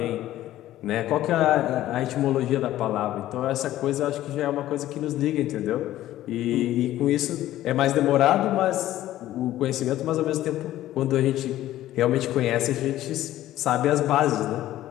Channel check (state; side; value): quieter; right; 14.0 dB